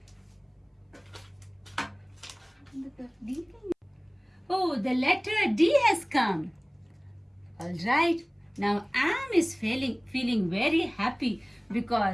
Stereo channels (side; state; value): both; identical; correlation 1.00